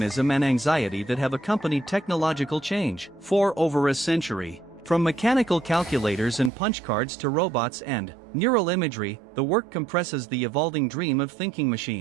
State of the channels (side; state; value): left; drops out; at 6.5 s